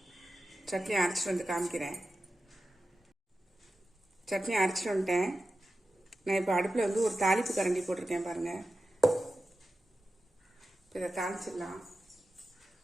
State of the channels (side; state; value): both; normal; correlation 0.92